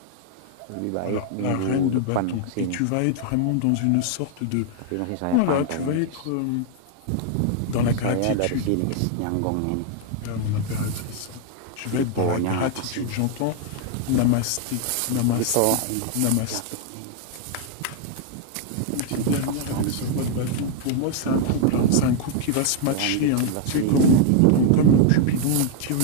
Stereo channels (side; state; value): both; different; correlation 0.00